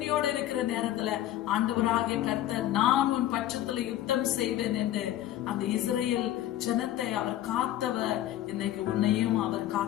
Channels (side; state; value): right; quieter; 13.1 dB